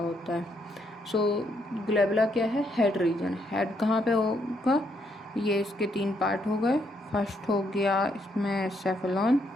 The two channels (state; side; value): normal; both; correlation 0.74